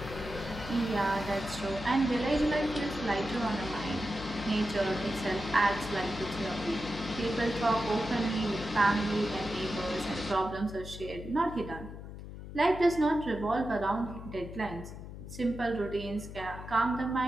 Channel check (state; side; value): noise; left; hum, 11 dB below the sound